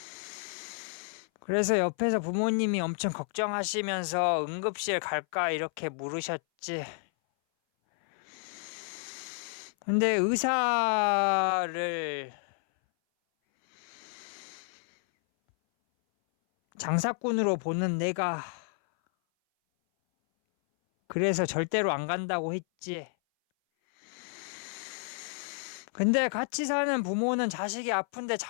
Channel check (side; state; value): right; silent; 57 dB below the other